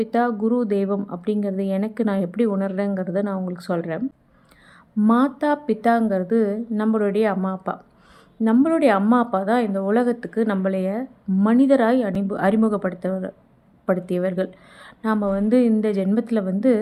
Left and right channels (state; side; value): identical; both; correlation 1.00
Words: குரு தெய்வம் அப்படிங்கிறது எனக்கு நான் எப்படி உணர்றேங்கிறத நான் உங்களுக்கு சொல்கிறேன். மாதா பிதாங்கிறது நம்மளுடைய அம்மா அப்பா. நம்மளுடைய அம்மா அப்பா தான் இந்த உலகத்துக்கு நம்மளைய மனிதராய் அறிமுகப்படுத்தியவர்கள். நாம் இந்த ஜென்மத்தில்